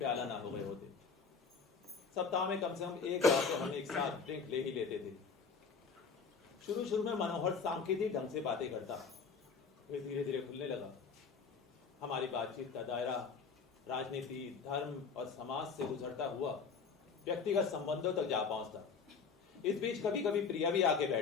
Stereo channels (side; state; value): right; quieter; 5.4 dB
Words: ना हो गए होते। सप्ताह में कम से कम एक बार तो हम एक साथ ड्रिंक ले ही लेते थे। शुरू में मनोहर सांकेतिक ढंग से बातें करता, फिर धीरे धीरे खुलने लगा। हमारी बातचीत का दायरा राजनीति, धर्म और समाज से गुजरता हुआ व्यक्तिगत संबंधों तक जा पहुंचता। इस बीच कभी कभी प्रिया भी आके